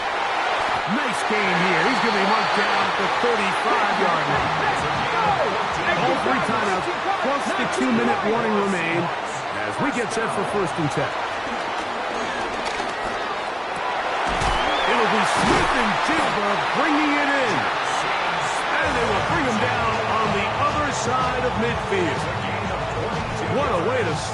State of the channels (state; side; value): identical; both; correlation 1.00